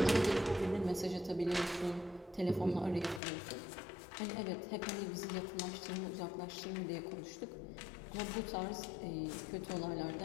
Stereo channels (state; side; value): drops out; right; at 3.2 s